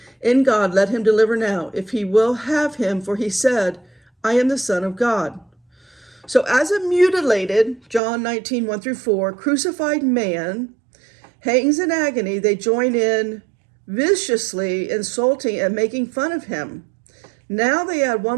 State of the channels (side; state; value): left; drops out; at 8.0 s